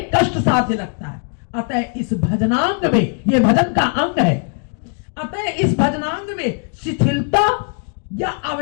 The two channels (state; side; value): quieter; right; 39.0 dB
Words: कष्ट साध्य लगता है। अतः इस भजनांग में, ये भजन का अंग है, अतः इस भजनांग में शिथिलता या